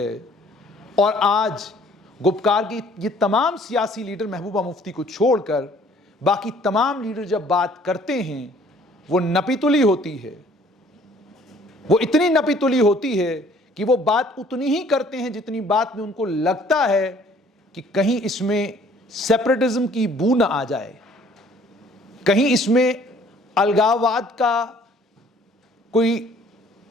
और आज गुपकार की ये तमाम सियासी लीडर महबूबा मुफ्ती को छोड़कर बाकी तमाम लीडर जब बात करते हैं वो नपीतुली होती है। वो इतनी नपीतुली होती है कि वो बात उतनी ही करते हैं जितनी बात में उनको लगता है कि कहीं इसमें सेपरेटिज्म की बू न आ जाए, कहीं इसमें अलगाववाद का कोई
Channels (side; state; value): both; normal; correlation 0.57